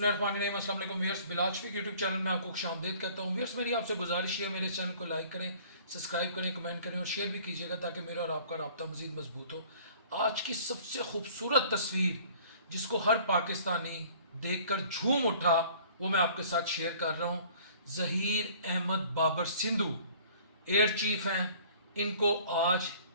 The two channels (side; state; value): both; inverted; correlation -0.52